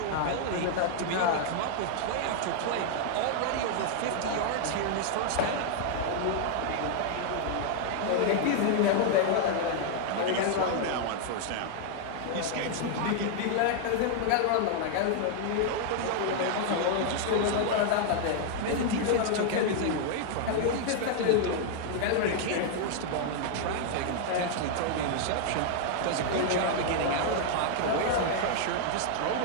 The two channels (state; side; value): different; both; correlation 0.00